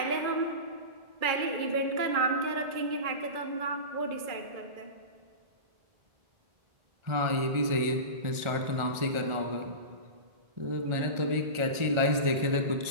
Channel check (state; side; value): late; left; 1.4 ms